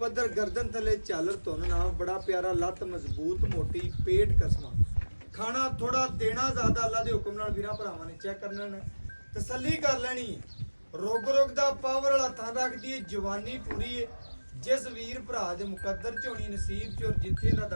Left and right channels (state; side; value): inverted; both; correlation -1.00